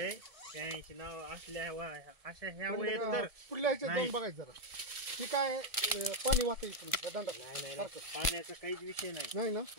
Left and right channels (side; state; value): left; late; 1.7 ms